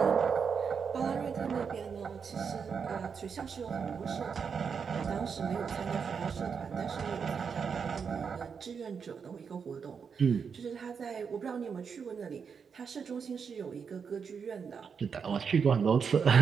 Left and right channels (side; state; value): left; quieter; 6.3 dB